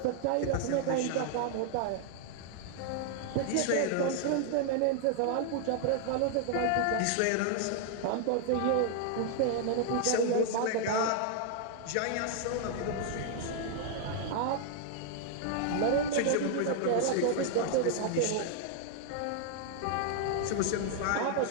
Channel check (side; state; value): both; different; correlation 0.00